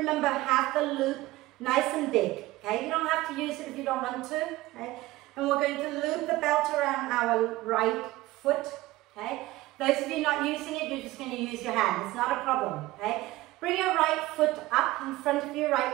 have the loop nice and big, okay? You don't have to use it if you don't want to, okay? And we're going to loop the belt around our right foot, okay? Those of you not using it, you're just going to use your hand. It's not a problem, okay? Bring your right foot up in front of you,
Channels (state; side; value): quieter; left; 18.2 dB